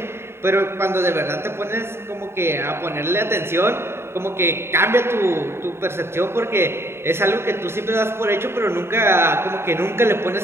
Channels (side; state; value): left; late; 0.12 ms